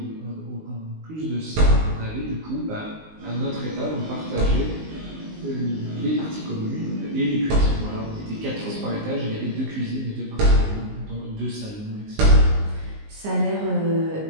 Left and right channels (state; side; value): late; left; 19 ms